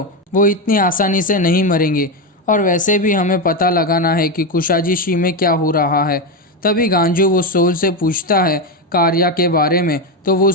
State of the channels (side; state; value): both; normal; correlation 0.11